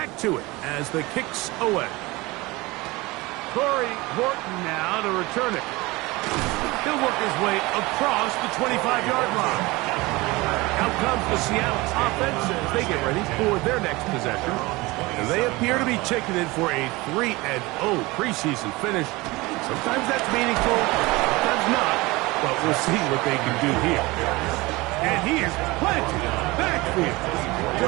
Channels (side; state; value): left; quieter; 22.2 dB